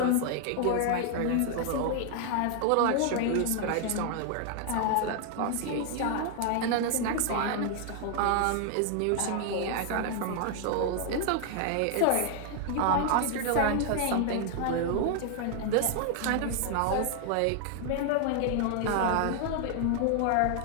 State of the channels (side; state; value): both; different; correlation 0.00